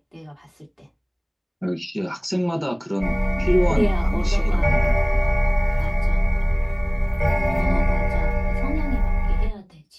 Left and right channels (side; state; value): both; identical; correlation 1.00